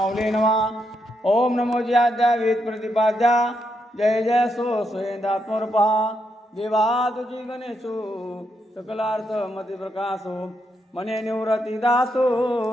नमः. ओम नमो ज्याद्या वेद प्रतिपाद्या, जय जय सो स्वयंदात्मरूपा, देवा तुझी गणेशो सकलार्थ मती प्रकाशो, मने निवृत्ती दासो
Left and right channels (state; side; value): normal; both; correlation 0.80